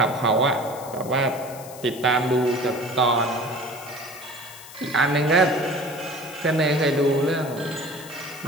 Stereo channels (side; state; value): left; noise; hiss, 17 dB below the sound